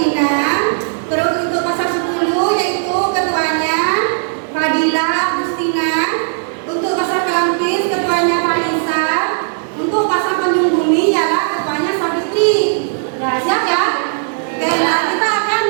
Terus untuk pasar 10 yaitu ketuanya Fadila Agustina. Untuk pasar Kelampis ketuanya Vanessa. Untuk pasar Tanjung Bumi ialah ketuanya Savitri. Nah, siap ya? Oke, nah kita akan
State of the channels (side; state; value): left; silent; 63 dB below the other